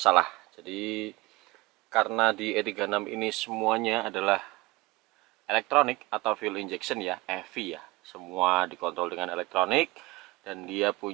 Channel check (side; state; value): left; quieter; 21.9 dB